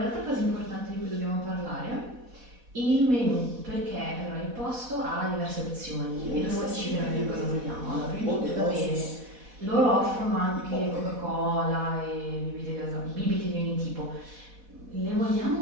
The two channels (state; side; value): late; left; 4.1 ms